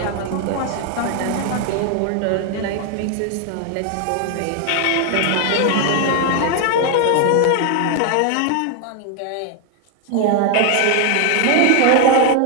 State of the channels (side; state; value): both; different; correlation 0.00